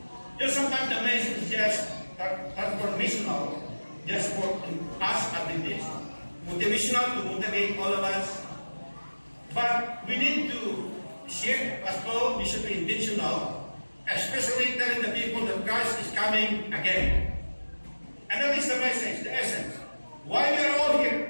Sometimes the message is just transformational, just for us Adventists, motivational to motivate all of us. But we need to share as well. We should be intentional, especially telling the people that Christ is coming again. And that is the message, the essence. Why we are all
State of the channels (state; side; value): inverted; both; correlation -1.00